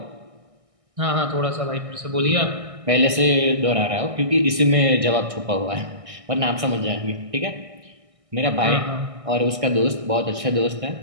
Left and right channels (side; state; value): left; late; 1.6 ms